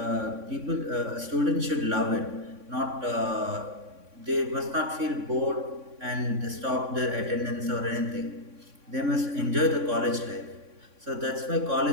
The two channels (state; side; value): late; left; 3.6 ms